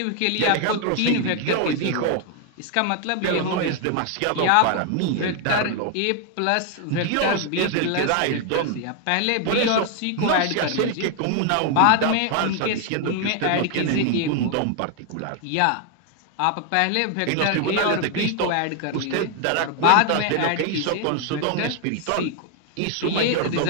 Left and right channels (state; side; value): different; both; correlation 0.00